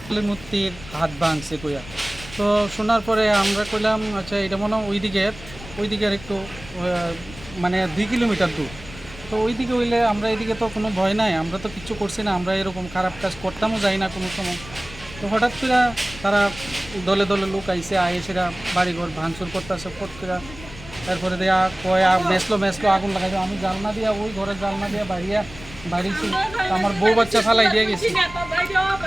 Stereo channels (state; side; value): noise; left; rumble, 16 dB below the sound